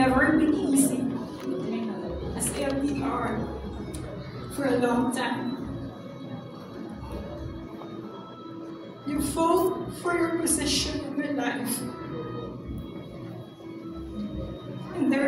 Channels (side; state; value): both; identical; correlation 1.00